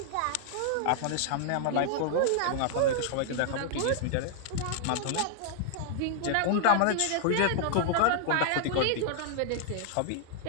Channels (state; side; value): different; both; correlation -0.01